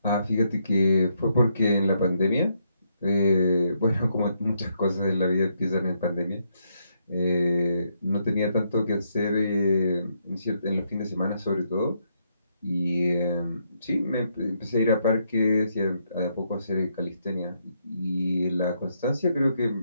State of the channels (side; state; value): both; inverted; correlation -0.76